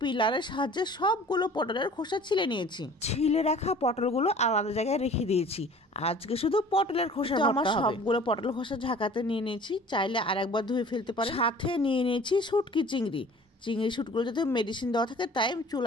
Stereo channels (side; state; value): both; normal; correlation 0.47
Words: সাহায্যে সবগুলো পটলের খোসা ছিলে নিয়েছি। ছিলে রাখা পটলগুলো আলাদা জায়গায় রেখে দিয়েছি। আজকে শুধু পটলের খোসা আমার সবগুলো পটল খোসা ঝাঁকাতে নিয়ে নিয়েছি, চাইলে আরেকবার ধুয়ে ফেলতে পারেন। সাথে নিয়ে নিয়েছি শুটকি চিংড়ি। চিংড়ি শুটগুলো যাতে মেডিসিন দেওয়া থাকে তাই